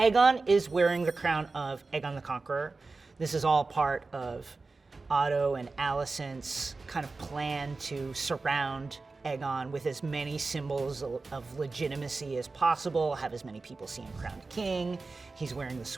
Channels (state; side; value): quieter; left; 3.8 dB